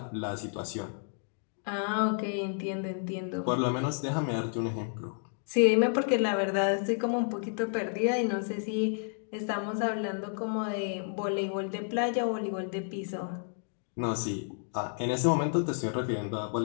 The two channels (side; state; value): right; silent; 57 dB below the other